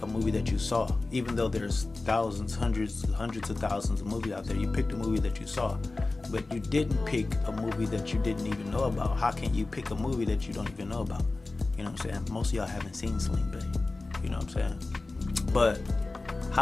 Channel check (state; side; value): quieter; right; 3.3 dB